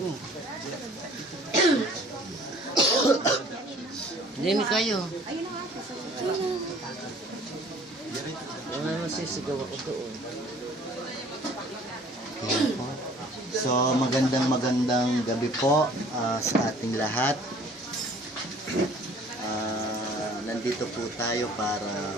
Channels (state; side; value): normal; both; correlation 0.52